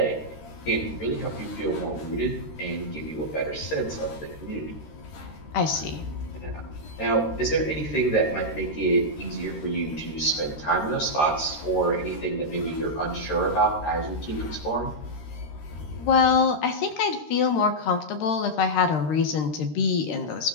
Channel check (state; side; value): late; right; 13 ms